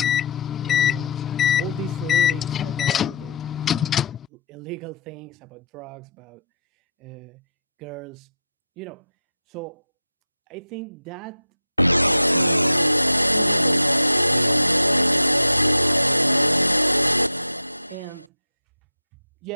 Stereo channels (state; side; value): inverted; both; correlation -0.62